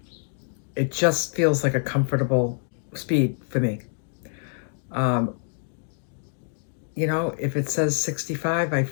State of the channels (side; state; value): right; silent; digital silence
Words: it just feels like a comfortable speed for me. If it says 65, I